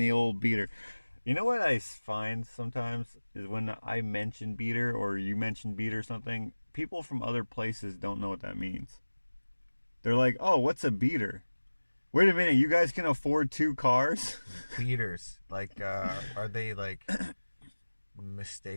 old beater. You know what I find sometimes is when I mention beater or you mention beater or something, people from other places don't know what that means. They're like, oh, what's a beater? Wait a minute, you guys can afford 2 cars? Beaters. Like, are they like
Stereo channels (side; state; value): both; inverted; correlation -1.00